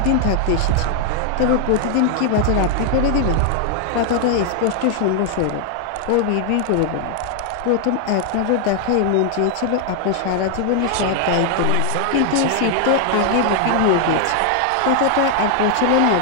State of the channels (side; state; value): both; different; correlation 0.00